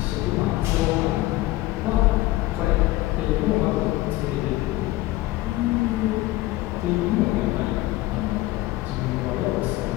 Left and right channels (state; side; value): quieter; right; 17.7 dB